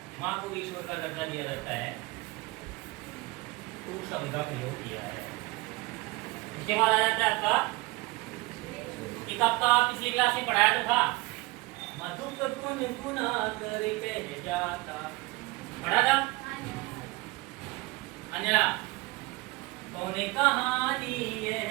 माँ को भी ईश्वर का दर्जा दिया जाता है, तू शब्द का प्रयोग किया है। इसके बाद आ जाता है आपका एक आपका पिछली क्लास में पढ़ाया तो था, मधुप गुण गुना कर कह जाता। पढ़ा था अंजना? तूने कहानी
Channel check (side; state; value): left; quieter; 22.7 dB